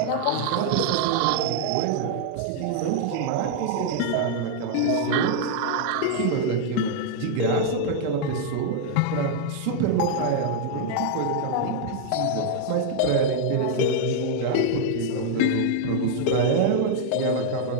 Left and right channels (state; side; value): different; both; correlation -0.01